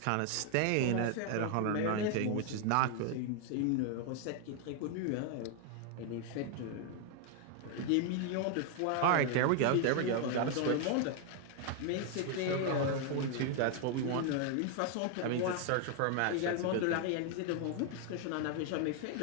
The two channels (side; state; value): both; different; correlation 0.01